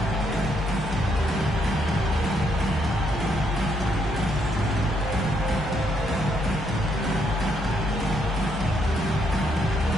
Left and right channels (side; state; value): both; normal; correlation 0.74